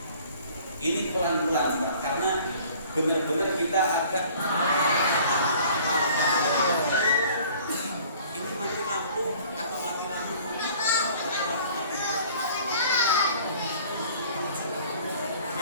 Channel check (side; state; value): both; inverted; correlation -0.52